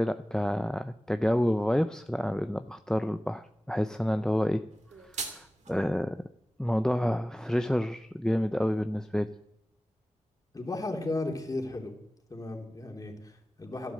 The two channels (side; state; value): both; normal; correlation 0.97